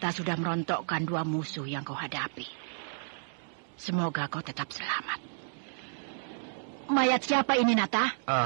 sudah merontokkan 2 musuh yang kau hadapi. Semoga kau tetap selamat. Mayat siapa ini, Nata?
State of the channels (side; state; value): left; silent; digital silence